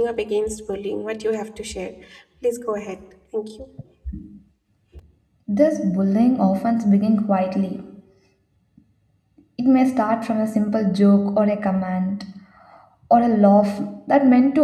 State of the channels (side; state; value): both; identical; correlation 1.00